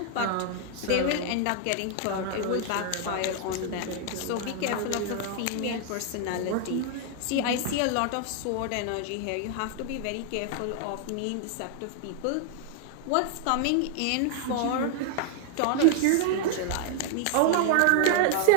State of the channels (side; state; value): both; different; correlation 0.00